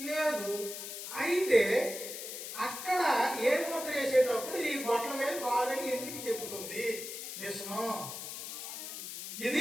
లేదు. అయితే అక్కడ ఏ ముద్ర వేసేటప్పుడు ఈ బొట్టల మీద బాగాని ఎందుకు చెబుతుంది విష్ణు?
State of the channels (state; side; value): noise; left; hiss, 8 dB below the sound